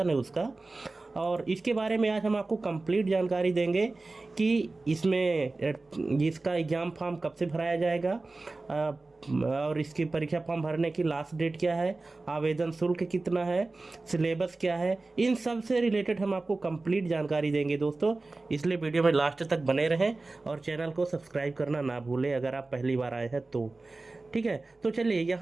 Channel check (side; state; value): left; quieter; 3.3 dB